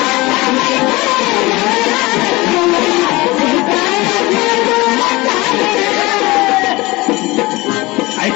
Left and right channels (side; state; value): right; quieter; 21.8 dB